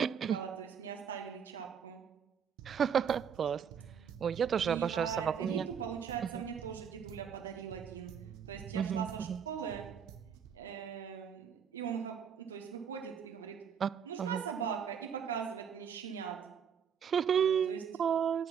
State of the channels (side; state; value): left; quieter; 7.4 dB